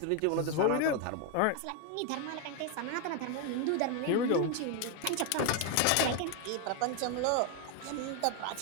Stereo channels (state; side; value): different; both; correlation 0.01